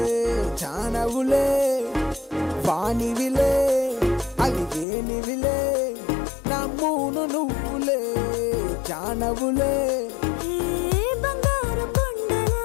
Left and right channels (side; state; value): right; drops out; at 4.9 s